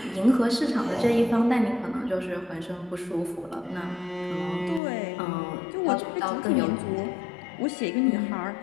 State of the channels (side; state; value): right; drops out; at 4.8 s